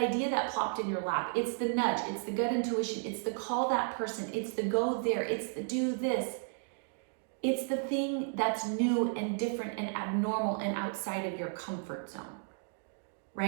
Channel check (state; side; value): silent; left; 55 dB below the other